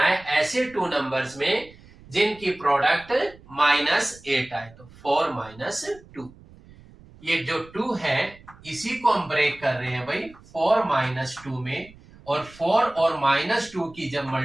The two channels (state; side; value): noise; right; rumble, 23 dB below the sound